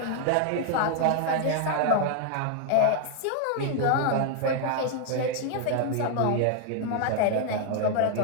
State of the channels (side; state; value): both; different; correlation 0.00